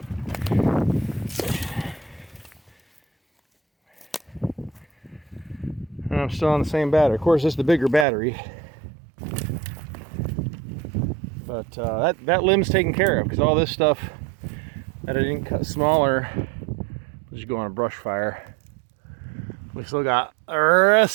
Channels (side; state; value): left; drops out; at 8.1 s